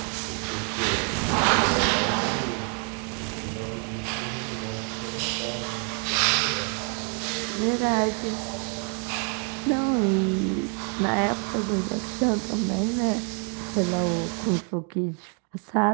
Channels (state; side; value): quieter; left; 39.4 dB